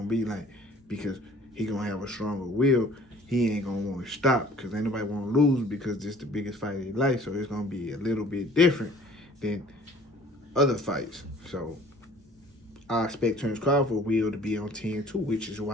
to be like. Because he going to have a stronger will. He ain't going to want to stop because ain't nobody want to lose because this is the biggest fight of his life. So it's going to be a little bit different than other fights. So I expect Terence Crawford will to be on 10-2, which is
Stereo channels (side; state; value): both; normal; correlation 0.52